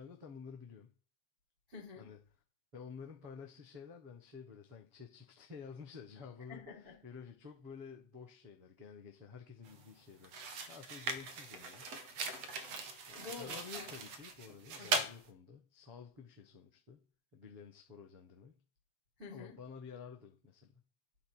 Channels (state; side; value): late; left; 7.9 ms